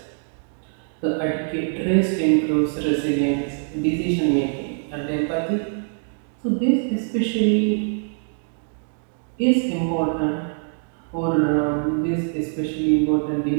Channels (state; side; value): silent; left; 63 dB below the other